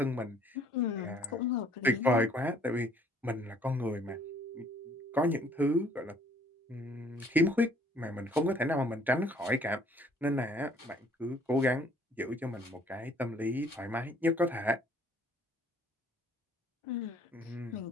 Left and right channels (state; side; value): normal; both; correlation 0.60